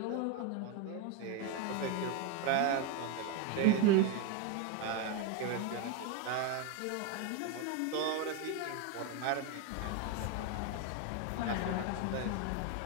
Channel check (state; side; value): different; both; correlation 0.02